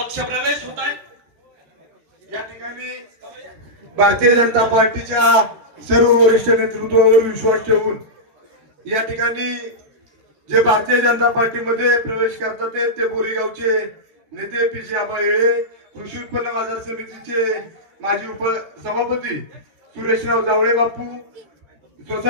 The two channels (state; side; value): late; left; 14 ms